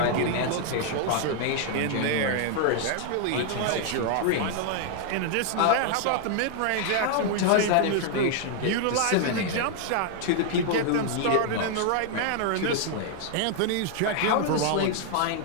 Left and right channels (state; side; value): different; both; correlation 0.00